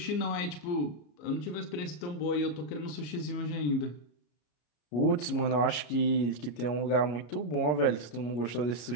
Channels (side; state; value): right; late; 33 ms